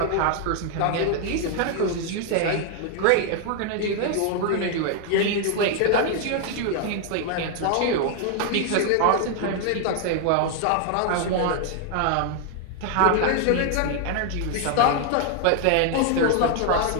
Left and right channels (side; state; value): both; different; correlation 0.00